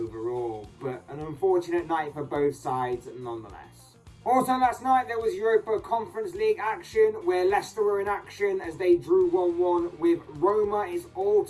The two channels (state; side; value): identical; both; correlation 1.00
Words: But an unfortunate night for both sides nonetheless. Also last night there was Europa Conference League action where Leicester were in action as they drew 1-1 with Roma. It's all